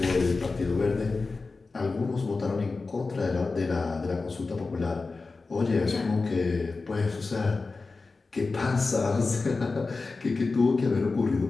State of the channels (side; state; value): right; quieter; 3.9 dB